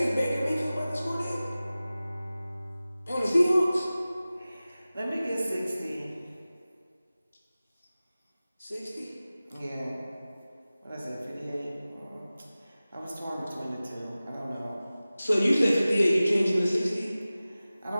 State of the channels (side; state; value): both; inverted; correlation -0.97